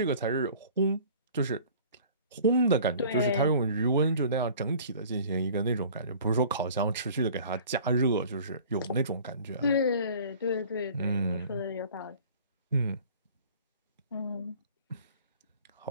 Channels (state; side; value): inverted; both; correlation -0.47